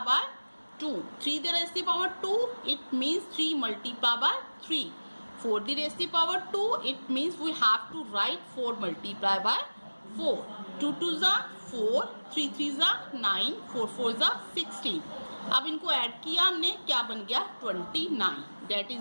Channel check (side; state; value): both; inverted; correlation -1.00